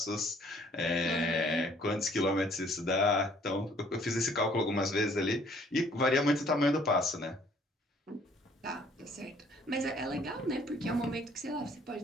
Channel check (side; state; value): both; normal; correlation 0.60